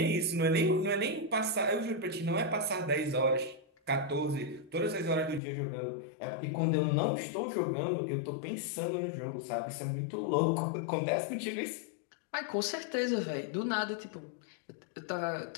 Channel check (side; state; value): right; drops out; at 5.4 s